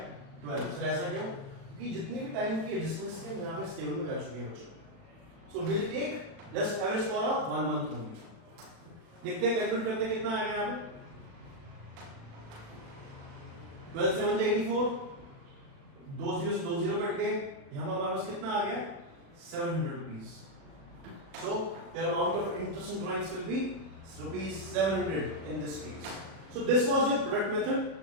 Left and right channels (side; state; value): left; late; 36 ms